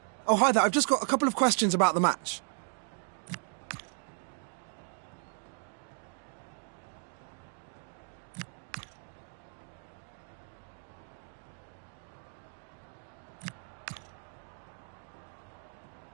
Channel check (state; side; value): silent; left; 54 dB below the other